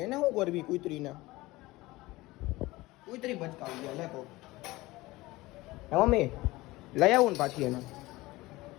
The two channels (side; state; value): right; quieter; 19.9 dB